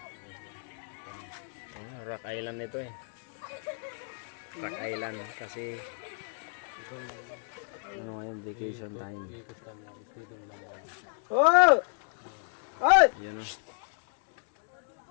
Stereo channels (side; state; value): right; silent; digital silence